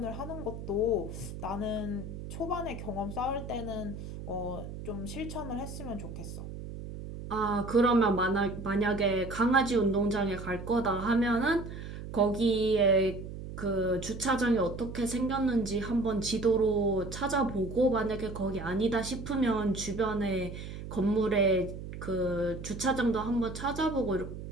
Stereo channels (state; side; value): noise; right; hum, 9 dB below the sound